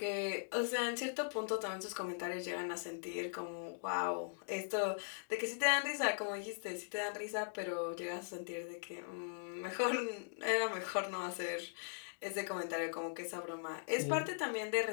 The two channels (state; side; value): silent; right; digital silence